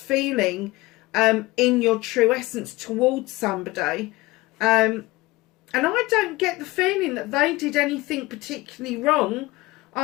in your true essence towards somebody, and I don't get the feeling that they did anything particularly wrong.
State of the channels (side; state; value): right; quieter; 20.7 dB